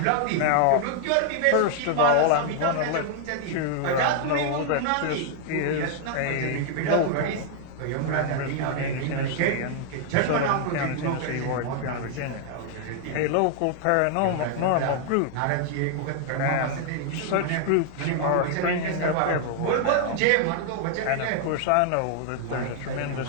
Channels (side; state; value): both; different; correlation 0.00